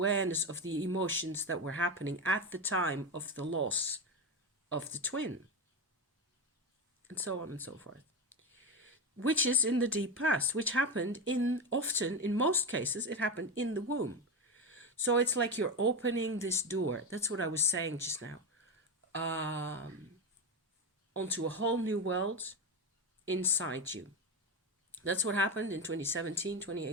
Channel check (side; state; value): both; normal; correlation 0.16